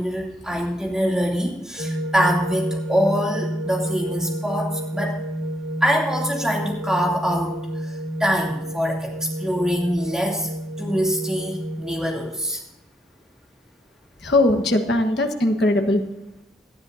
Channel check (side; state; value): both; normal; correlation 0.76